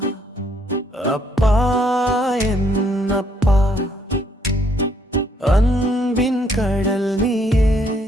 அப்பா என்னப்பா அன்பின் கடல் நீயே,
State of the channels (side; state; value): both; normal; correlation 0.69